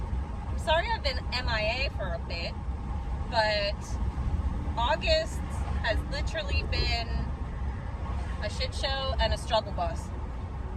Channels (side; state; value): both; identical; correlation 1.00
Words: I'm sorry I've been MIA for a bit, but August has literally been a shit show and a struggle bus.